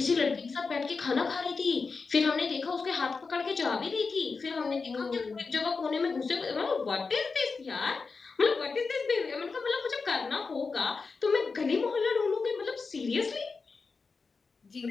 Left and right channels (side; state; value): right; quieter; 4.6 dB